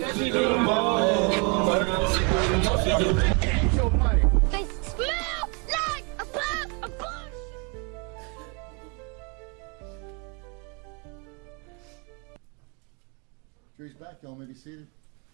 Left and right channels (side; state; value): left; quieter; 33.9 dB